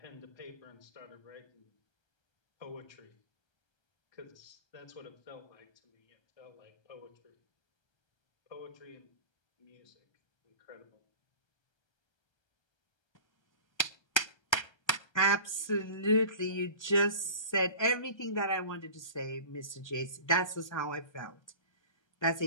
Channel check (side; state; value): right; late; 1.3 ms